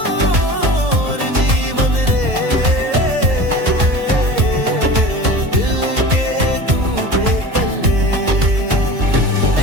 जीवन रे दिल के तू बेकल्ले।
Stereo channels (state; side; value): late; left; 2.0 ms